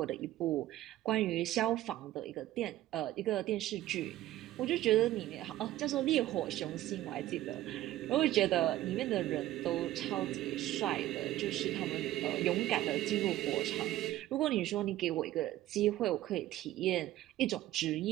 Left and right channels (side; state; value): left; quieter; 14.8 dB